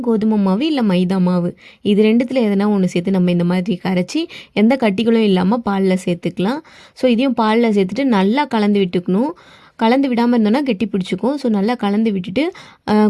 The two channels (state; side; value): identical; both; correlation 1.00